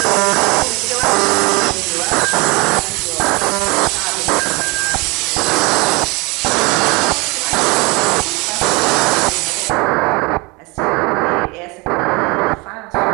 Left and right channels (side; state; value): left; quieter; 26.7 dB